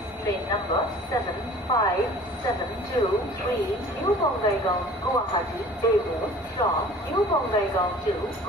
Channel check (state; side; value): normal; both; correlation 0.47